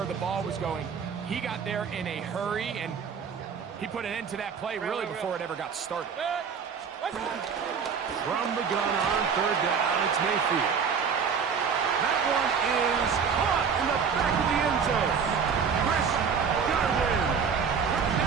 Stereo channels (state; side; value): quieter; left; 6.4 dB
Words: the ball was going, he got there in a hurry, and he put an end to that play really before it ever got started. From the gun on 3rd down, it's Mayfield. That one is caught in the back of the end zone. Chris Godwin.